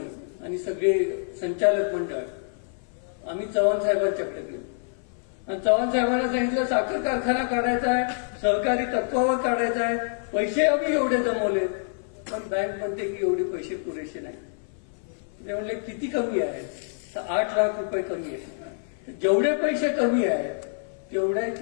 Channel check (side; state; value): right; silent; 56 dB below the other